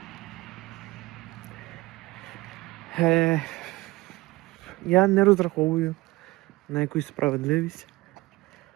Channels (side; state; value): left; quieter; 20.7 dB